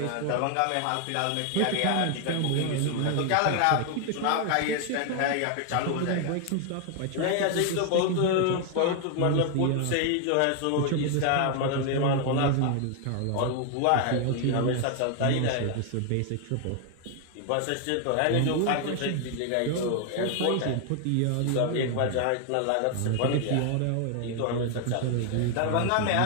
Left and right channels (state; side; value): different; both; correlation 0.00